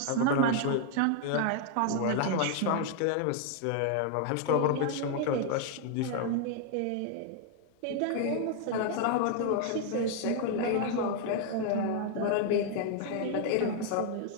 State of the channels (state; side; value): different; both; correlation 0.00